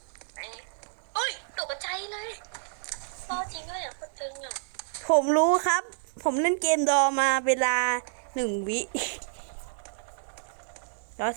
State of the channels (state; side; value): silent; left; digital silence